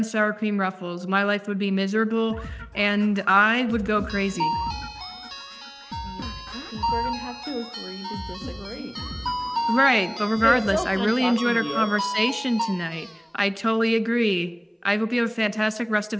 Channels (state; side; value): identical; both; correlation 1.00